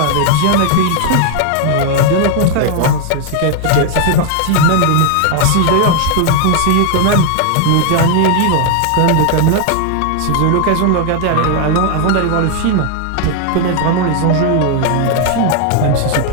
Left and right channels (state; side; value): different; both; correlation 0.00